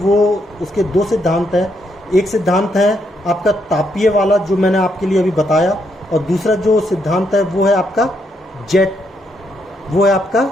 उसके दो सिद्धांत हैं। एक सिद्धांत है आपका तापीय वाला जो मैंने आपके लिए अभी बताया, और दूसरा जो सिद्धांत है वो है आपका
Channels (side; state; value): both; normal; correlation 0.76